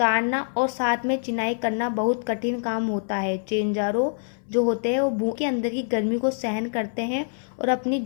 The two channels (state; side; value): silent; right; 62 dB below the other